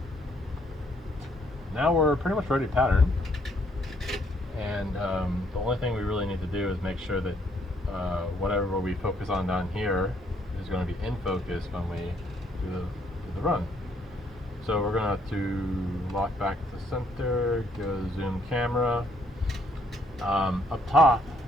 now we're pretty much ready to pattern. And the only thing we really need to do is make sure that whatever we focus on down here is going to be in focus when we do the run. So we're going to lock back to center, go to zoom camera. Up top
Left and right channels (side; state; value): both; normal; correlation 0.69